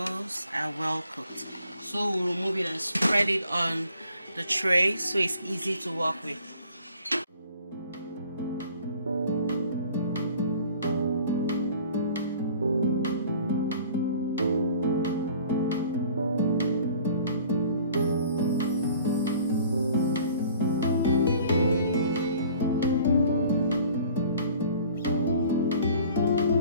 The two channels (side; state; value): both; inverted; correlation -0.52